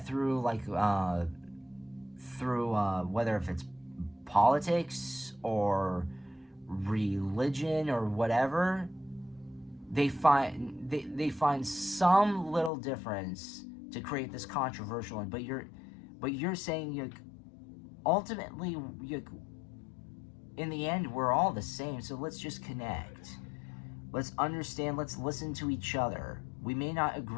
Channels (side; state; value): right; drops out; at 12.7 s